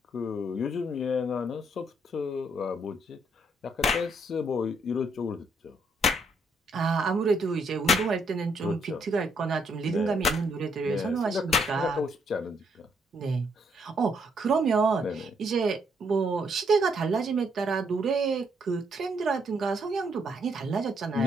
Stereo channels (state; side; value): normal; both; correlation 0.72